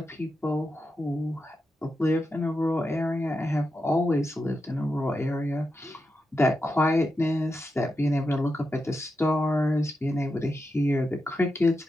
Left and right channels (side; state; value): both; normal; correlation 0.88